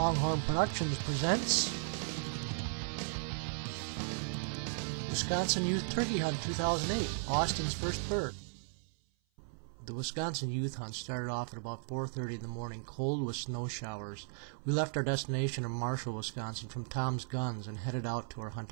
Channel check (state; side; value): silent; left; 54 dB below the other